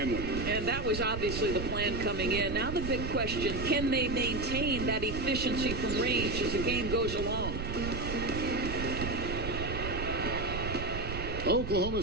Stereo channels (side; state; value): right; noise; rumble, 5 dB below the sound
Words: And that was obviously the plan coming in. Now the big question, can they maintain that efficiency from range as the game goes along? Oklahoma